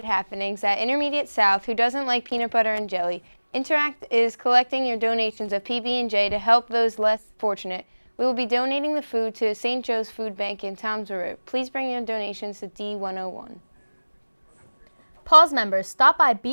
happenings at Intermediate South, who doesn't like peanut butter and jelly. Interact is collecting your donations of PB&J to help those less fortunate. We will be donating the food to St. Joe's Food Bank in Toms River. Please bring your donations to D101. Pause members, stop by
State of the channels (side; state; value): both; inverted; correlation -1.00